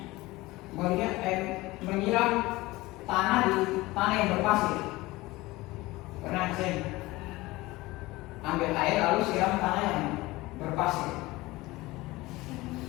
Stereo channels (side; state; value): right; quieter; 20.1 dB